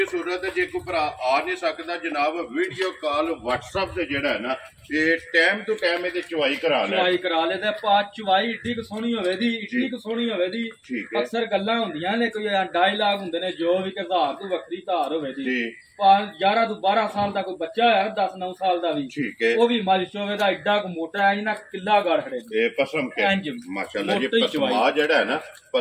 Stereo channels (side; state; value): both; identical; correlation 1.00